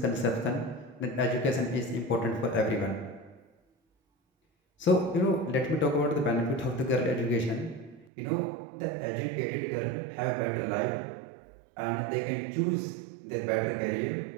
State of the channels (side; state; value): left; drops out; at 8.1 s